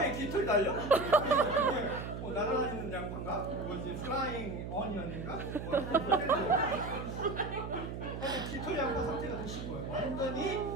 깃털 달려? 이게 날아다니는 양파인가? 뭐지? 플라잉 어니언인가? 깃털 양파 상태가 드신 거예요. 완전히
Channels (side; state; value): right; noise; hum, 7 dB below the sound